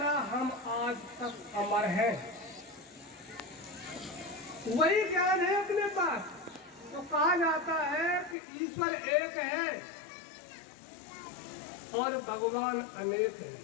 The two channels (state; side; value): drops out; right; at 8.3 s